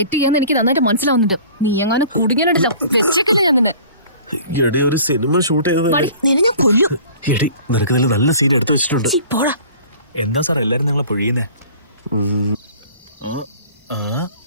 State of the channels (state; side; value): inverted; both; correlation -0.47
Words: ചെയ്യാന്ന് എനിക്ക് നന്നായിട്ട് മനസ്സിലാവുന്നുണ്ട്. നീ എങ്ങനെ കുടുങ്ങിയിട്ടുണ്ടല്ലോ. വെച്ചേക്കല്ലേ ഞാൻ നിന്നെ. എടി, ഒരു സിനിമ ഷൂട്ട് ചെയ്തതല്ലേ. നിന്നെ ഞാൻ കൊല്ലും. എടി, നിനക്ക് ഇതിൽ നല്ല സീൻ എടുത്തു വെച്ചിട്ടുണ്ട്. പോടാ. എന്താ സാർ എല്ലാരും നിങ്ങളെ പൊഴിയുന്നേ?